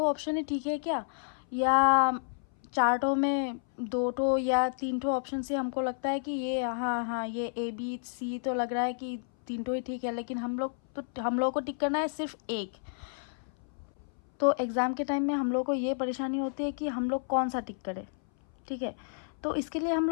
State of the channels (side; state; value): right; silent; 57 dB below the other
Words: ही ठीक है क्या, या चार्टों में 2 या 3 ऑप्शन से हमको लगता है कि ये हाँ हाँ ये ए बी सी तो लग रहा है कि 3 ही ठीक है, लेकिन हम लोग को टिक करना है सिर्फ एक। तो एग्ज़ाम के टाइम में हम लोग को ये परेशानी होती है कि हम लोग कौन सा टिक करें, ठीक है। तो इसके लिए हम